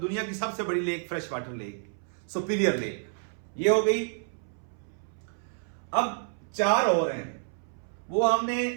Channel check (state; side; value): silent; left; 58 dB below the other